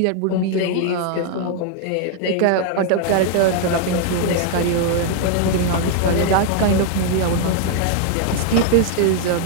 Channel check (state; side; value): different; both; correlation 0.00